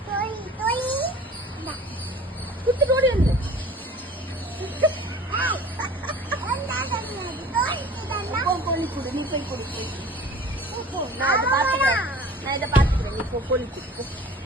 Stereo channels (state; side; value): normal; both; correlation 0.45